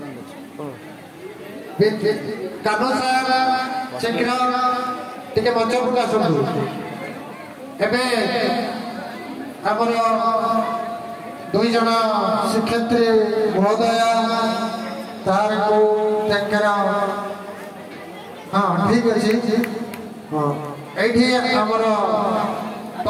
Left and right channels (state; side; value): identical; both; correlation 1.00